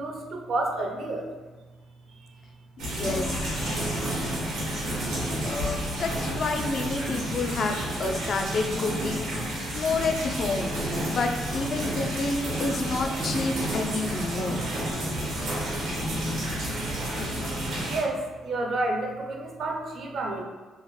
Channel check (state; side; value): normal; both; correlation 0.74